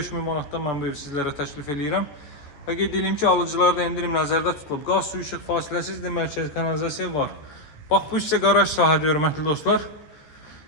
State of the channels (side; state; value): right; late; 14 ms